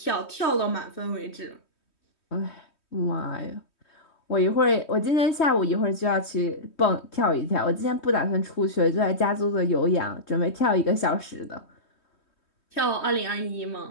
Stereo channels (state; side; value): late; right; 3.2 ms